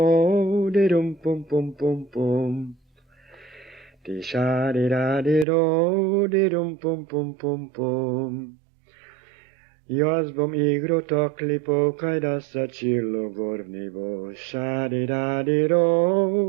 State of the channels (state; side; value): drops out; left; at 5.5 s